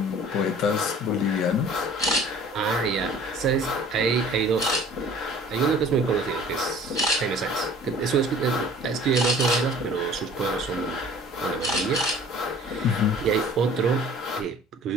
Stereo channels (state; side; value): normal; both; correlation 0.48